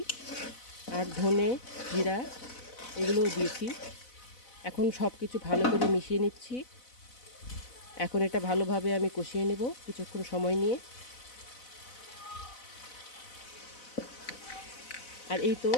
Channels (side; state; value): right; late; 4.0 ms